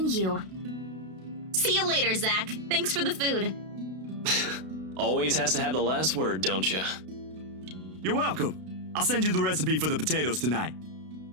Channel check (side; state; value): left; late; 32 ms